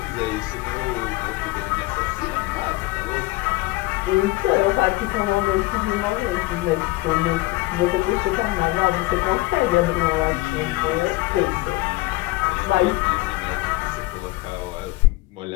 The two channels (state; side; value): quieter; right; 20.4 dB